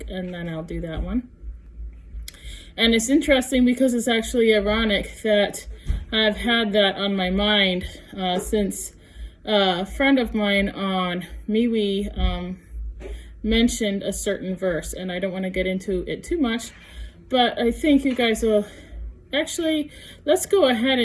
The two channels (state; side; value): identical; both; correlation 1.00